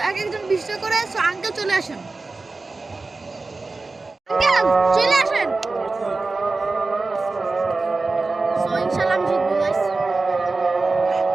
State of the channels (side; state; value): left; quieter; 3.6 dB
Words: এক একজন 20 টাকা করে। সো আঙ্কেল চলে আসেন। আঙ্কেল চলে আসেন। সো ইনশাআল্লাহ আমি জিতবো গাইস।